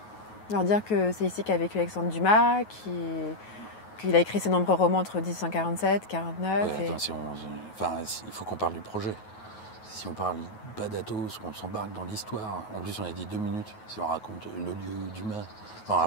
leur dire que c'est ici qu'a vécu Alexandre Dumas, qu'il a écrit ses nombreux romans entre 1847 et 1949. Ouais, attends, il faut qu'on parle du projet. Si on parle pas d'Athos, qu'on s'embarque dans l'histoire, en plus on a dit 2 minutes, si on raconte le lieu Dumas, on aura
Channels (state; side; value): late; right; 9.4 ms